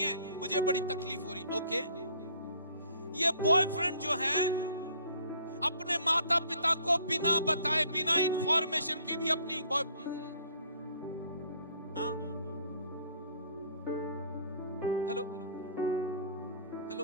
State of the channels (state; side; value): inverted; both; correlation -0.57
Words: मुझे बड़ी तकलीफ हो रही। ओके। ये बॉयफ्रेंड जो है अपने माता पिता को बिना बताए, बिना इंफॉर्मेशन के भी अपनी हेलो